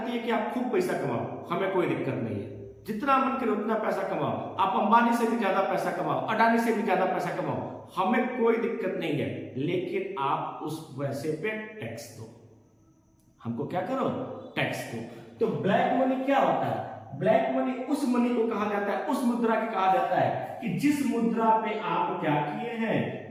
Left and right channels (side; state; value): both; identical; correlation 1.00